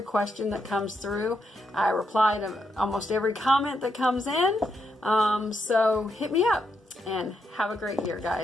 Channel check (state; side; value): normal; both; correlation 0.81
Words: question that comes through. I reply to almost every comment that comes in. So hit me up and have a great year,